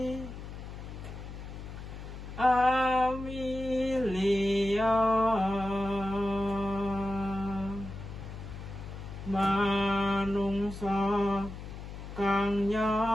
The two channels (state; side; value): noise; left; hum, 11 dB below the sound